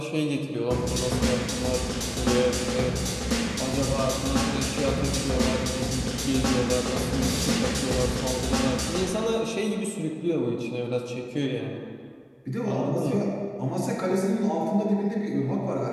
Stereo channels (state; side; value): identical; both; correlation 1.00